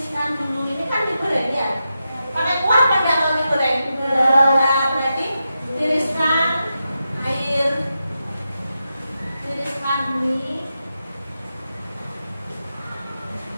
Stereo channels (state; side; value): inverted; both; correlation -0.88